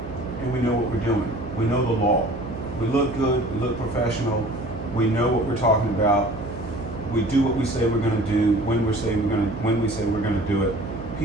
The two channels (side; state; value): right; noise; hum, 11 dB below the sound